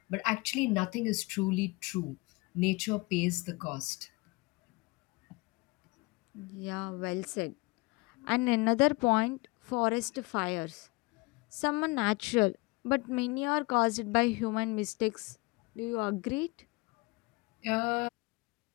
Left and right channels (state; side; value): quieter; right; 25.1 dB